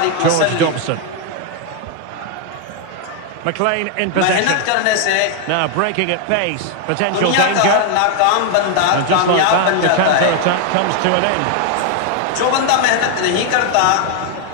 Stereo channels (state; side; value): different; both; correlation 0.00